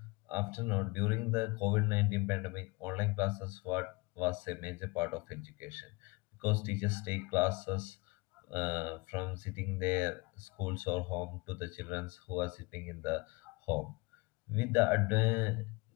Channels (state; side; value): quieter; right; 25.5 dB